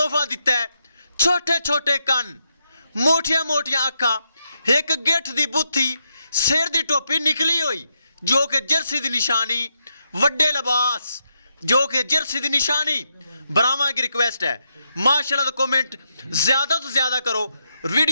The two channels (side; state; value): both; inverted; correlation -0.82